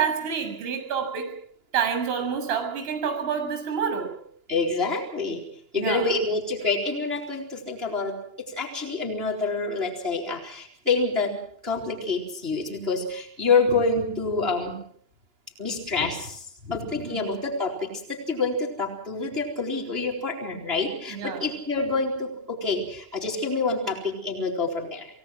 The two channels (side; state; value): left; late; 2.9 ms